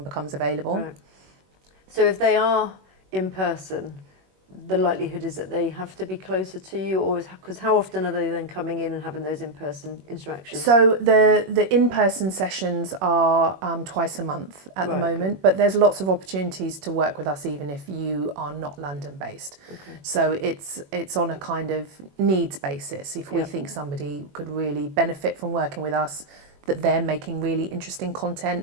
becomes available. Right. So if they are in person, the likelihood is that they have to be closer to you, or because how often are they then coming in and having those in-person interactions? So the in-person sessions are twice a month at the moment, but there's lots of opportunities to work with us even if you are not London-based. Okay. So it's on a kind of needs basis. If we think somebody could really benefit from working with us, that they're making really interesting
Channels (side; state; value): left; late; 21 ms